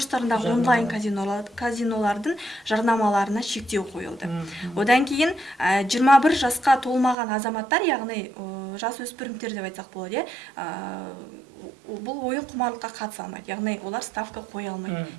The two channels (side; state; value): left; drops out; at 7.2 s